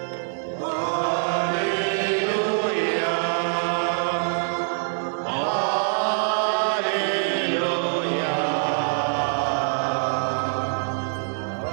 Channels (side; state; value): left; silent; digital silence